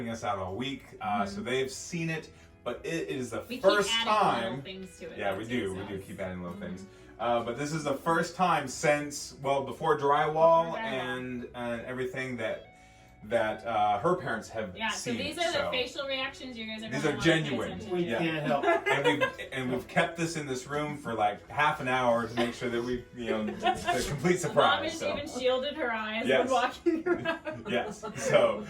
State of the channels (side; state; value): both; identical; correlation 1.00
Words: us out all week, so they've seen it, but it is the first keep adding time. little things to it. Yeah, we do. We do keep adding little things. But this is the first time since, well, before drywall and everything that her parents have Yeah, so seen. these are the facial reactions you guys are These gonna are want to pay genuine. attention We to. can't help. And we've kept this in this room for like half an hour to make sure that we, it's a complete Mom surprise. has So. even shielded her eyes Yes. when walking around. Yes. So